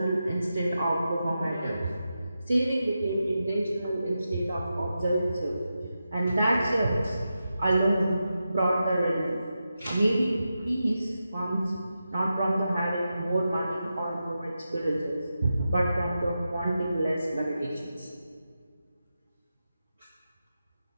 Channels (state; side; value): inverted; both; correlation -0.90